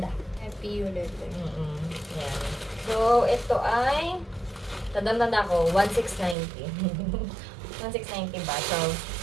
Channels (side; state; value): left; drops out; at 6.4 s